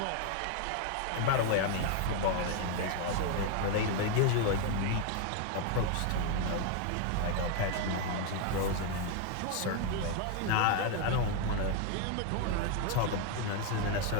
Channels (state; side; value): different; both; correlation 0.01